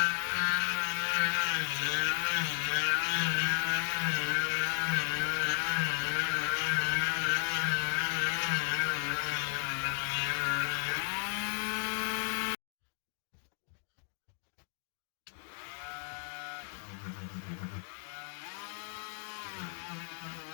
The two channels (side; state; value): right; silent; 55 dB below the other